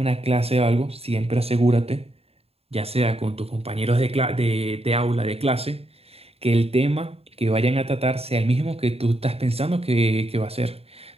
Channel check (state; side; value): late; left; 0.29 ms